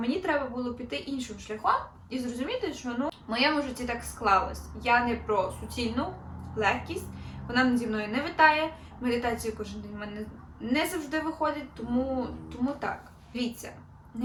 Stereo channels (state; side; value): identical; both; correlation 1.00